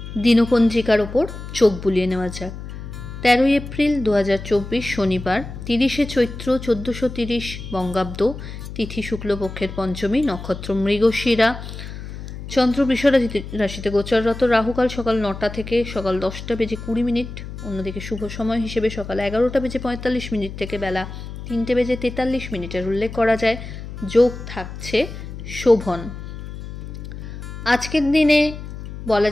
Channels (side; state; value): left; noise; hum, 10 dB below the sound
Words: দিনপঞ্জিকার ওপর চোখ বুলিয়ে নেওয়া যাক। 13ই এপ্রিল 2024 শনিবার, 30শে চৈত্র 1430 বঙ্গাব্দ, তিথি শুক্লপক্ষের পঞ্চমী, নক্ষত্র মৃগশিরা, চন্দ্র বৃষ রাশিতে গোচররত, রাহুকাল সকাল 9টা থেকে সকাল 10টা বেজে 20 মিনিট, অন্যদিকে শুভ সময় হিসেবে সকাল 11টা বেজে 45 মিনিট থেকে বেলা 3টে বেজে 43 মিনিটের উল্লেখ করা যায়। যোগ থাকছে শোভন। আজকের দিনে বলা